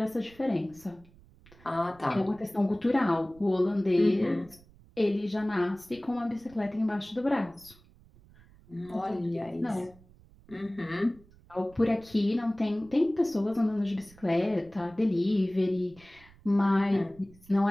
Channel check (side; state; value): right; noise; rumble, 25 dB below the sound